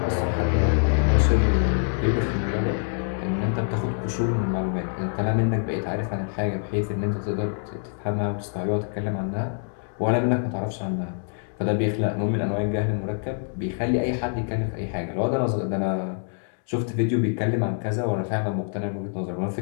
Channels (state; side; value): silent; right; digital silence